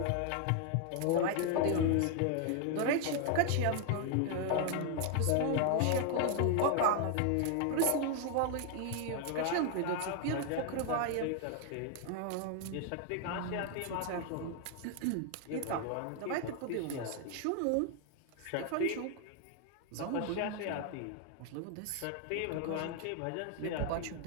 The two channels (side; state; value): both; different; correlation 0.00